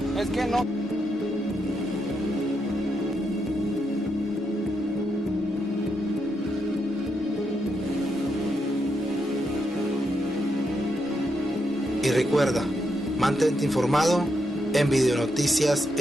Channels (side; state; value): both; normal; correlation 0.81